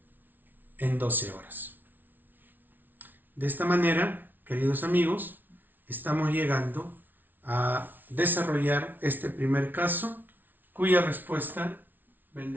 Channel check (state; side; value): late; left; 0.087 ms